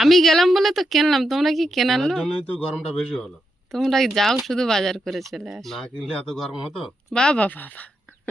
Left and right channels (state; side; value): normal; both; correlation 0.84